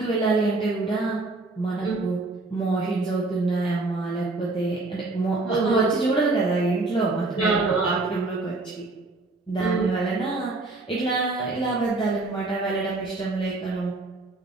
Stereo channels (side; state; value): left; quieter; 3.2 dB